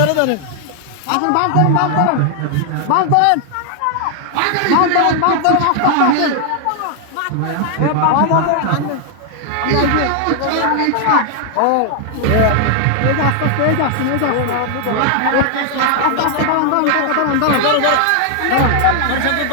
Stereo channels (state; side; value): different; both; correlation 0.00